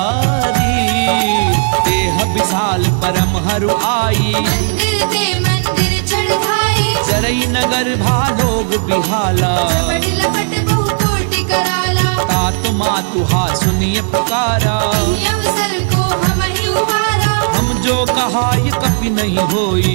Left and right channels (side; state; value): left; silent; digital silence